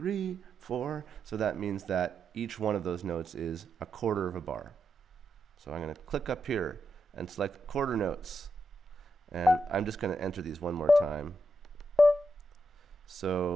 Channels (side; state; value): both; normal; correlation 0.84